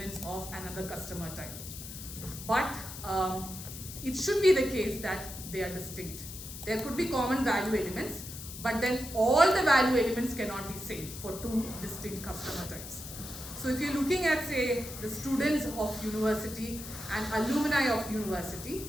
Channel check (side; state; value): left; noise; hiss, 11 dB below the sound